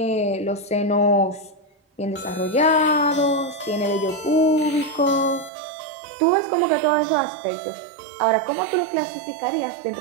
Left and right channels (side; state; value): left; drops out; at 5.5 s